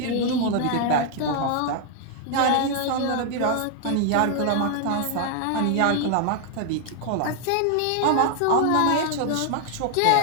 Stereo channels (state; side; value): different; both; correlation 0.00